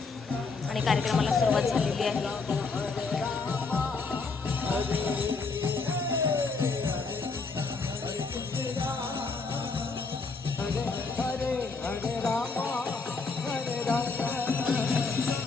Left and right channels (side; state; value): right; quieter; 4.3 dB